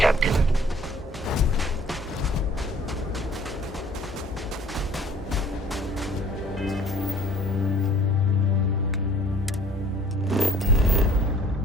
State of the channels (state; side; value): normal; both; correlation 0.54